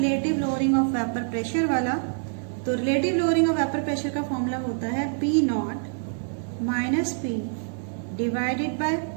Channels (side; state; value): left; silent; 59 dB below the other